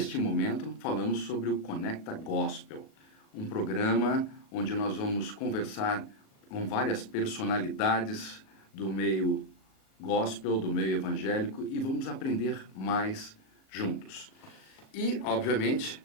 momento falamos sobre o Conecta Gospel. Um programa onde nós vamos conversar com várias personalidades do meio gospel, do meio evangélico e vamos aprender mais juntos. E, obviamente,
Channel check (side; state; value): right; late; 37 ms